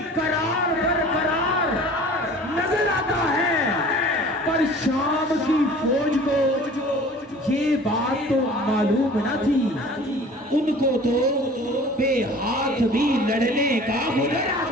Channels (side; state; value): both; normal; correlation 0.45